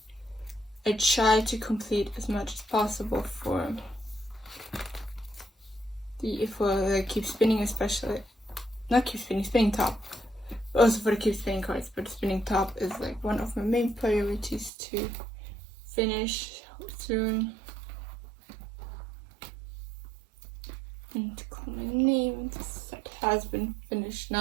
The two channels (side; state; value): left; drops out; at 14.7 s